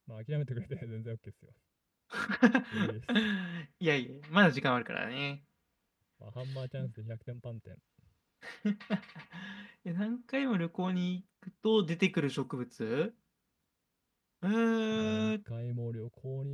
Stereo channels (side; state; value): both; identical; correlation 1.00